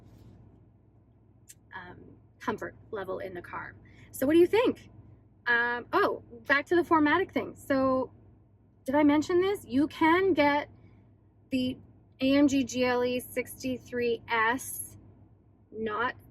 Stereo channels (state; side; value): identical; both; correlation 1.00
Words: comfort level in the car. So what do you think? Oh, back to the 4MATIC thing. So did I mention this? You can get the AMG GLE 63S, not